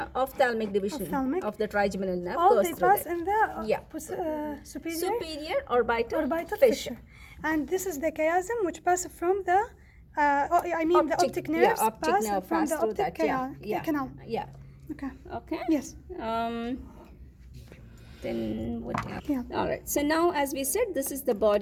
ophthalmic division of the trigeminal nerve. All goes they through pass that. in the superior orbital fissure. And this is the chiasm which passes from the the optic nerves pass from the optic canal. Yeah. Okay. Yes. Then what else? All right. So now, as we said, this is the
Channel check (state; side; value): identical; both; correlation 1.00